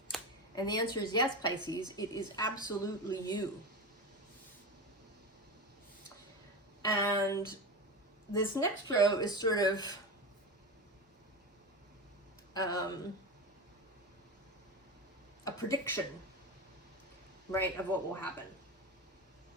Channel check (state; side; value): normal; both; correlation 0.22